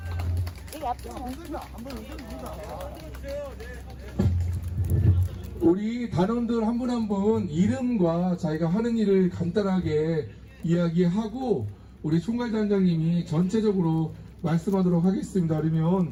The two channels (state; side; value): identical; both; correlation 1.00